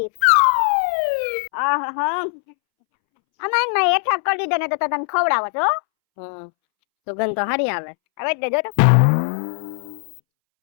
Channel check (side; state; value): right; silent; 65 dB below the other